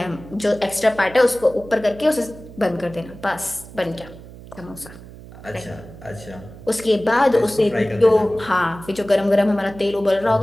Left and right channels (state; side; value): noise; right; hum, 17 dB below the sound